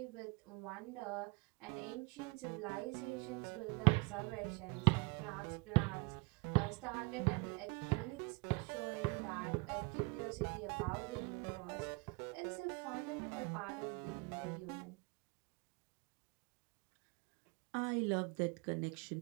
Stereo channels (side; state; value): left; quieter; 27.6 dB